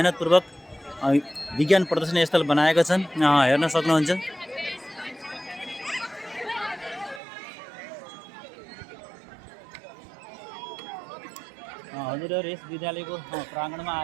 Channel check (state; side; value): drops out; left; at 7.2 s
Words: विज्ञान प्रदर्शनी स्थल बनाएका छन्। हेर्न सक्नुहुन्छ। हजुरहरू यस विद्यालयको प्राङ्गणमा